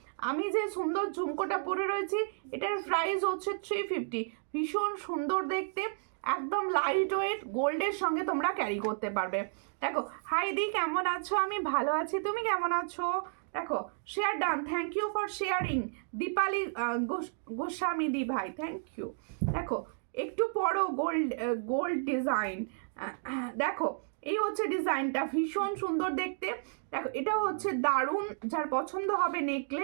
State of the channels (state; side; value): silent; left; digital silence